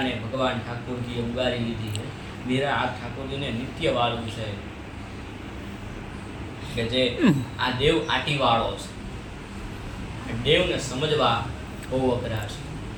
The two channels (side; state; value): both; identical; correlation 1.00